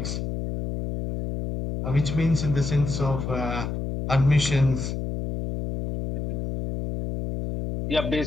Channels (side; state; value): left; noise; hum, 4 dB below the sound